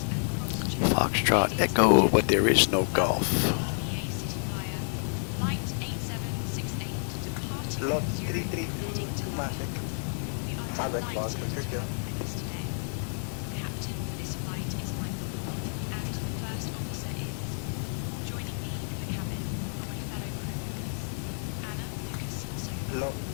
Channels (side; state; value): right; silent; 58 dB below the other